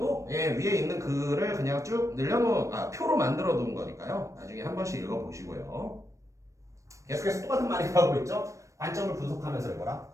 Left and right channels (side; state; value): left; late; 0.15 ms